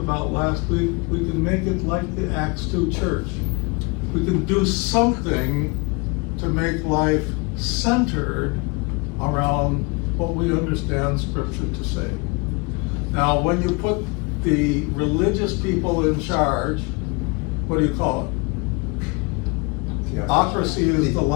last week, we can make it like the Acts 2 church. We can do something to make life centered around what we understand Scripture to say. Now, when you put the religious people in charge, what do you call it? Theocracy is the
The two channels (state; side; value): quieter; right; 29.5 dB